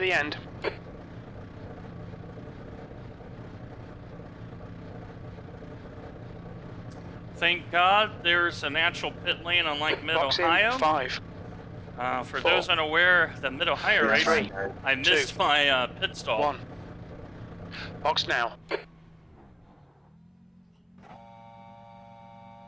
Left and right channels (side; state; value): both; identical; correlation 1.00